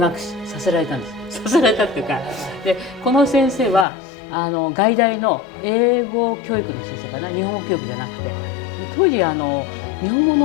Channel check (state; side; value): drops out; right; at 3.9 s